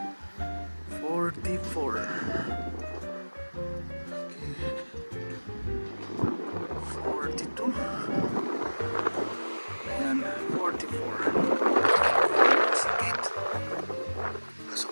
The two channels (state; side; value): inverted; both; correlation -1.00